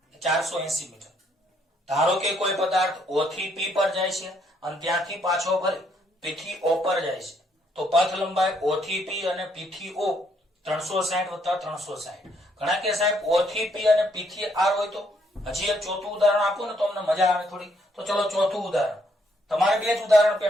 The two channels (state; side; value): normal; both; correlation 0.71